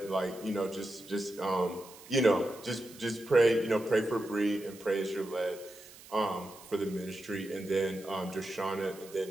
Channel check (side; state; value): right; noise; hiss, 19 dB below the sound